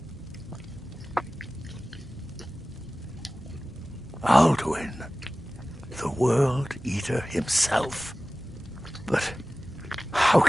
Alduin, the World Eater himself. But how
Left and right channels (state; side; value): normal; both; correlation 0.97